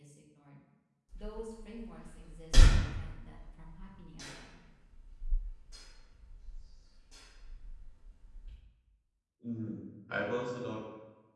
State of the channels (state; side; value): identical; both; correlation 1.00